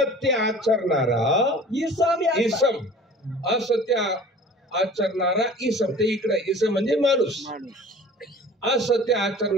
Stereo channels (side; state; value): both; normal; correlation 0.44